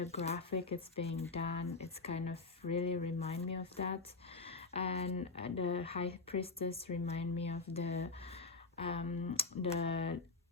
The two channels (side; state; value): right; quieter; 3.9 dB